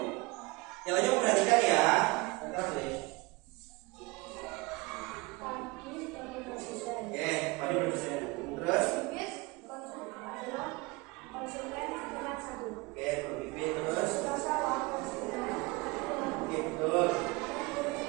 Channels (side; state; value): left; quieter; 24.7 dB